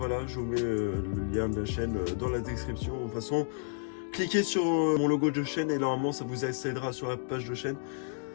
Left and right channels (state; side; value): silent; right; digital silence